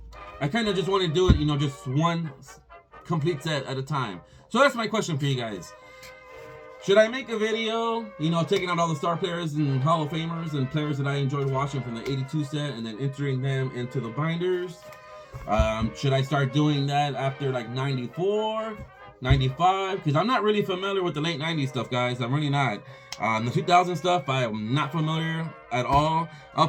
I kind of just want to do it, you know, just one complete set at a time. So that's my question for you guys. Should I make a video, you know, taking out all the star players and Hall of Famers and players that I enjoyed watching from the 82 set and then entering them into the binders? Should I start doing that after like 94, 95? Because I'm not really familiar with the late 90s stuff, guys. I'm really not. The 2000 stuff, I am not familiar at all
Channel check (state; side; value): identical; both; correlation 1.00